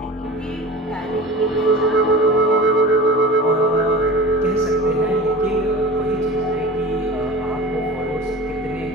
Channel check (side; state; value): both; normal; correlation 0.36